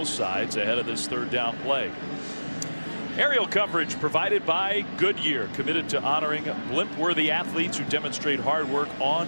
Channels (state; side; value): inverted; both; correlation -1.00